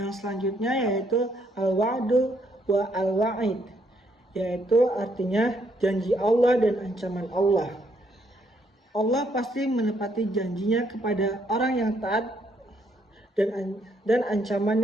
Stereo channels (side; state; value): both; normal; correlation 0.71